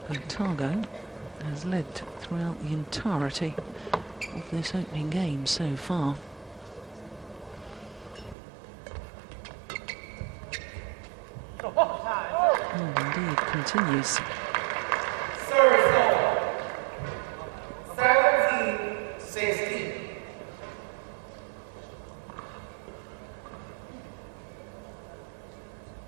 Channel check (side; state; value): left; drops out; at 8.3 s